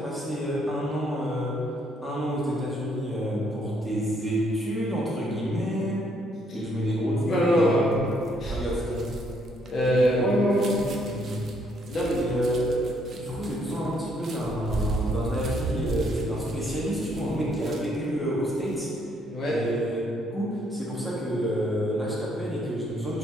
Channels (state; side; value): normal; both; correlation 0.70